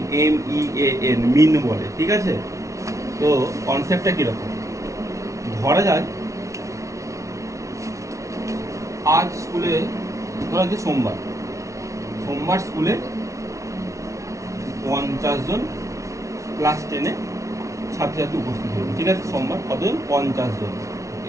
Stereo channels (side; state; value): left; late; 0.15 ms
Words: MEAN, মিন বলে, ঠিক আছে? তো কনসেপ্টটা কিরকম? ধরা যায় আজ স্কুলে, ধরা যে সোমবার স্কুলে 50 জন ক্লাস 10-এ ছাত্রছাত্রী উপস্থিত হবে, ঠিক আছে? সোমবার কতজন? 50 জন।